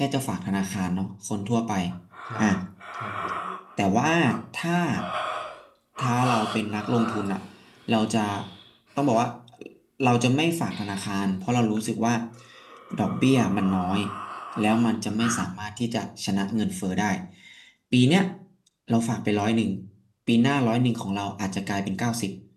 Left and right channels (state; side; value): identical; both; correlation 1.00